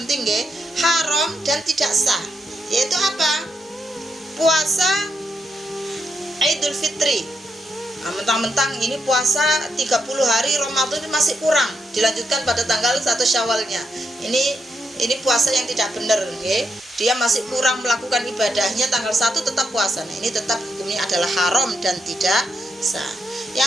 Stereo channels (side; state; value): both; normal; correlation 0.81